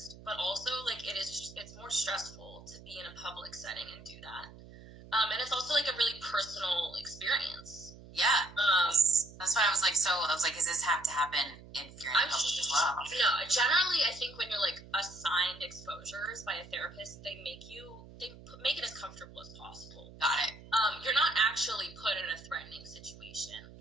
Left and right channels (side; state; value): right; noise; hum, 18 dB below the sound